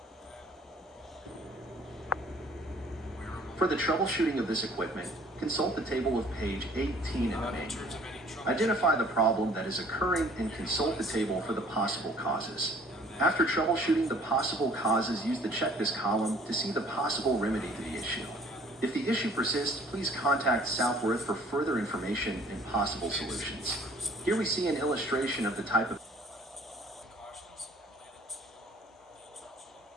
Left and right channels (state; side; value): normal; both; correlation 0.55